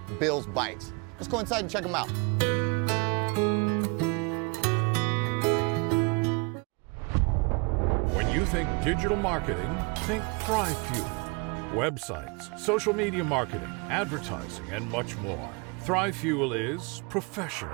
Bill's Bikes. Let's go inside and check them out. When you think digital marketing, think ThriveFuel. Websites, social media marketing, advertising, and much more. ThriveFuel is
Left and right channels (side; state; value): left; quieter; 30.3 dB